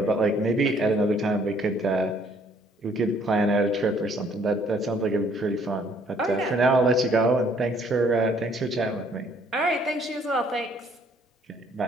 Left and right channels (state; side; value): normal; both; correlation 0.63